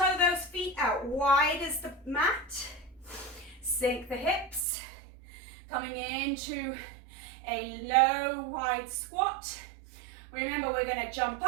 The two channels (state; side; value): drops out; left; at 4.6 s